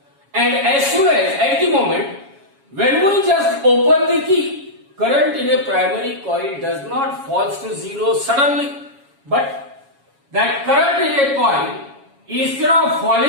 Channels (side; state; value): left; late; 7.2 ms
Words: And as soon as at the moment when we just open the key, current in a primary coil does not fall to zero suddenly, but that current in a coil, instead of